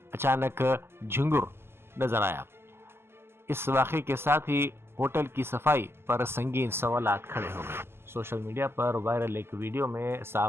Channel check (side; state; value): left; late; 0.12 ms